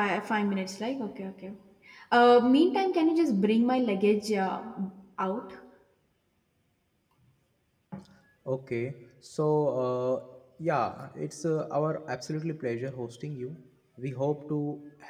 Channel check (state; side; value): identical; both; correlation 1.00